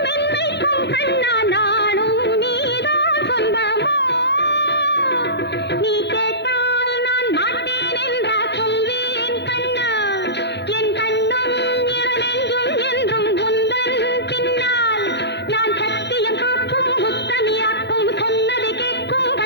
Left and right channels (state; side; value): late; right; 0.50 ms